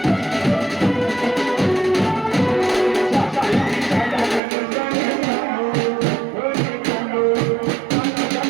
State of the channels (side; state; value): left; drops out; at 4.4 s